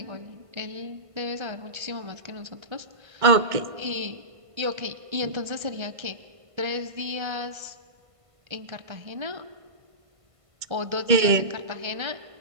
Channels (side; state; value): left; late; 1.5 ms